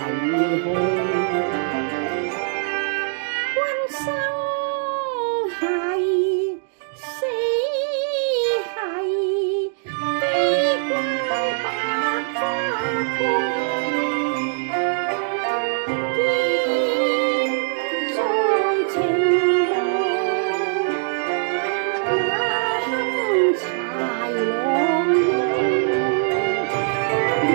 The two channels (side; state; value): left; silent; digital silence